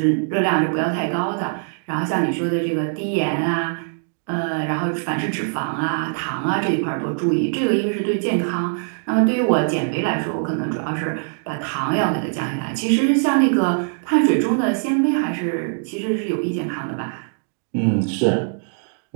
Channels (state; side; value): silent; left; digital silence